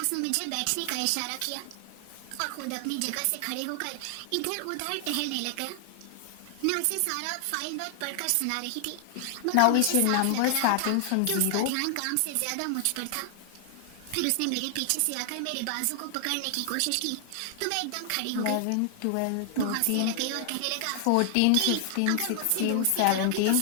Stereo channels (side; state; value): both; different; correlation 0.00